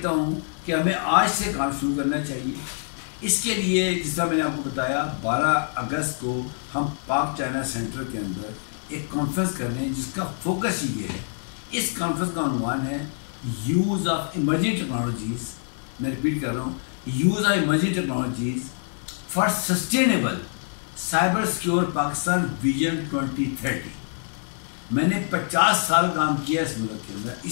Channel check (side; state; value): right; silent; digital silence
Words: ہوں کہ ہمیں آج سے کام شروع کرنا چاہیے. اس کے لیے جس طرح میں نے آپ کو بتایا 12 اگست کو ہم پاک چائنا سینٹر کے اندر ایک کانفرنس کر رہے ہیں جس کا فوکس یہ ہے. اس کانفرنس کا عنوان ہے یوز آف ایمرجنگ ٹیکنالوجیز. میں ریپیٹ کر رہا ہوں، use of emerging technologies for sustainable cyber secure Pakistan vision 2030. میں نے 50 سال کام کیا اس ملک کے اندر،